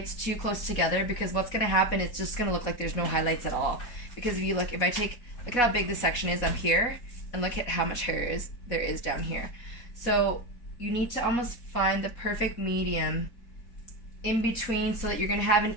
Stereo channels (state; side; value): late; right; 4.1 ms